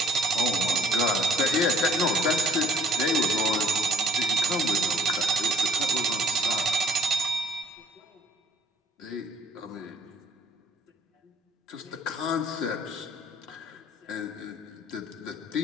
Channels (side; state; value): both; normal; correlation 0.60